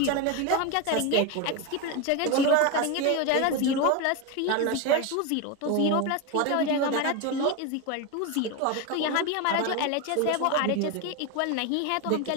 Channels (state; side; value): different; both; correlation 0.03